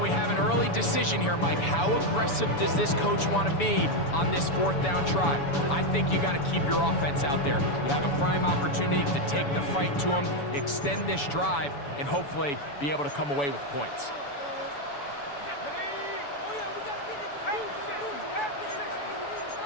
have an early decision here, Mike. How aggressive does this coach want to be on this 4th down try? I think you got to keep your offense out there. You have a prime opportunity to take the fight to them, extend this drive, and hopefully be able to come away with points.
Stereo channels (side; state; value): right; late; 7.0 ms